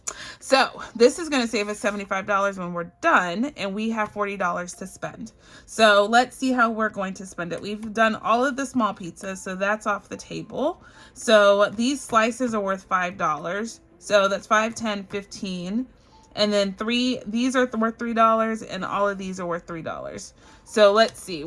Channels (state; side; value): identical; both; correlation 1.00